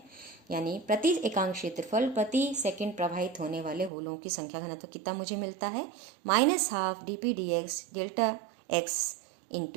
यानी प्रति एकांक क्षेत्रफल प्रति सेकंड प्रवाहित होने वाले होलों की संख्या घनत्व कितना मुझे मिलता है, -12 dp dx delta x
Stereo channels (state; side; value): drops out; left; at 3.9 s